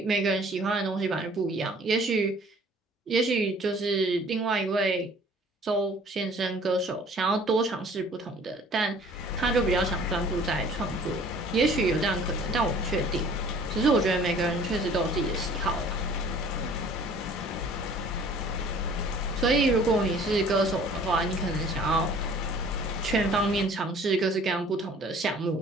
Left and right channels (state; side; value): normal; both; correlation 0.52